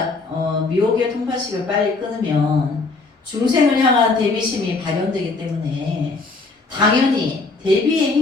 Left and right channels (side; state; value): right; quieter; 3.8 dB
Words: 미혹의 통팔식을 빨리 끊으면 중생을 향한 대비심이 발현되기 때문에 당연히 대비의